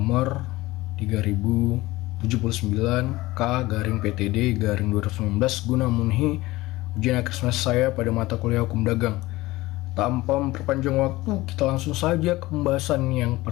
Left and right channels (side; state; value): right; quieter; 19.0 dB